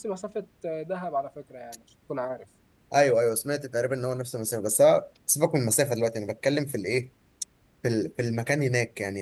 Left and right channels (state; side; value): identical; both; correlation 1.00